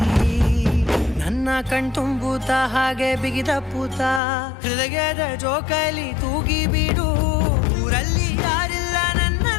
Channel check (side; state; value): right; drops out; at 4.2 s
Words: ನನ್ನ ಕಣ್ತುಂಬುತ್ತ ಹಾಗೆ ಬಿಗಿದಪ್ಪುತ್ತ ಹೃದಯದ ಜೋಕಾಲಿ ತೂಗಿ ಬಿಡು. ಊರಲ್ಲಿ ಯಾರಿಲ್ಲ